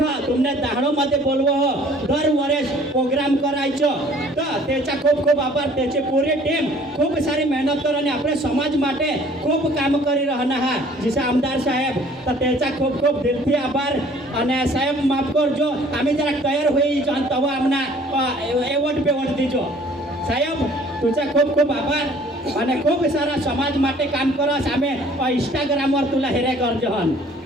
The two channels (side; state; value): both; normal; correlation 0.55